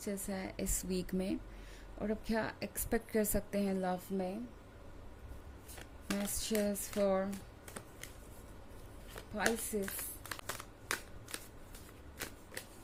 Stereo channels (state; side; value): identical; both; correlation 1.00